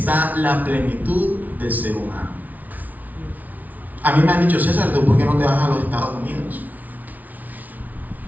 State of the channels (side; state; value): left; late; 0.077 ms